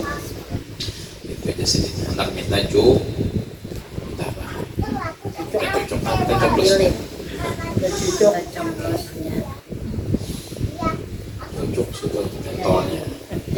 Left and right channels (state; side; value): identical; both; correlation 1.00